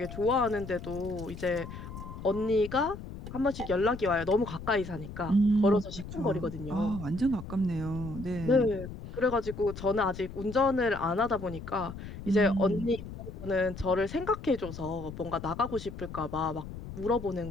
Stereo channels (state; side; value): noise; left; rumble, 11 dB below the sound